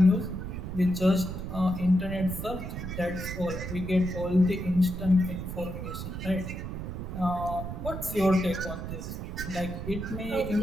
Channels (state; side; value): noise; right; rumble, 6 dB below the sound